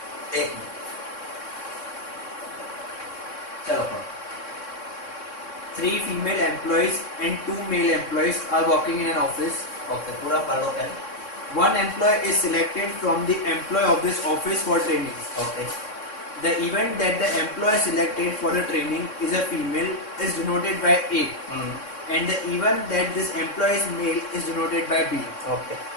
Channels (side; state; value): right; late; 3.6 ms